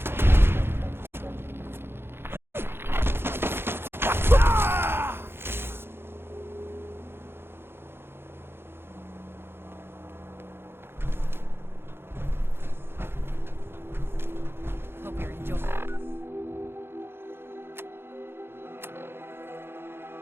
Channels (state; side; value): late; left; 0.11 ms